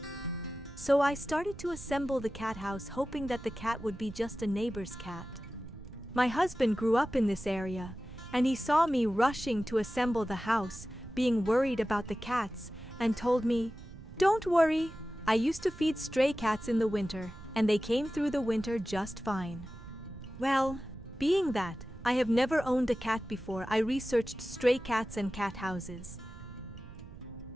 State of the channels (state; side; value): noise; right; rumble, 15 dB below the sound